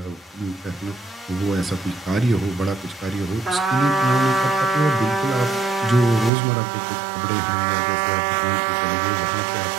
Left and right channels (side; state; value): left; drops out; at 6.3 s